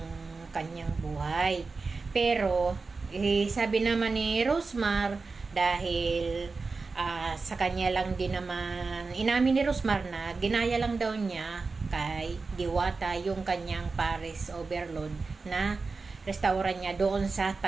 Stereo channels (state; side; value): quieter; left; 4.1 dB